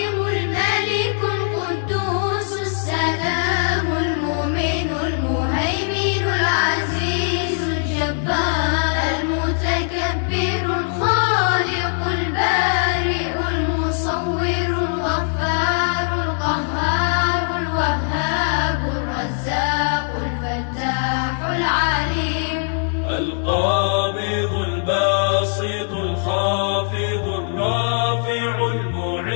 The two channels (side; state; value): right; silent; 65 dB below the other